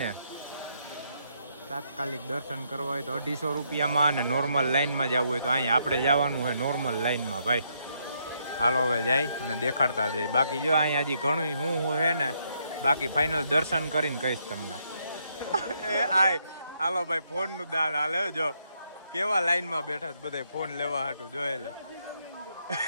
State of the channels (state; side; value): inverted; both; correlation -0.75